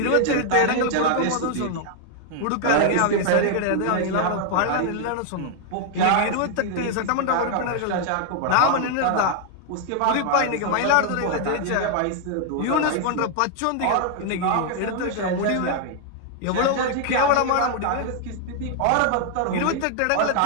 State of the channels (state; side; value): different; both; correlation 0.00